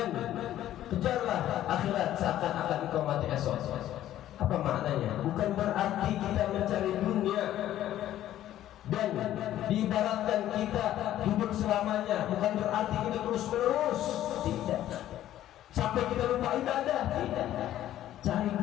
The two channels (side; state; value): right; quieter; 12.7 dB